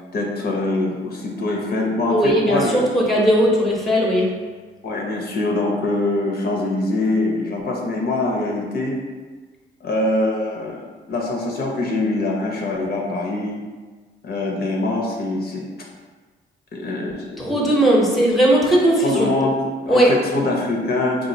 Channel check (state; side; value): normal; both; correlation 0.60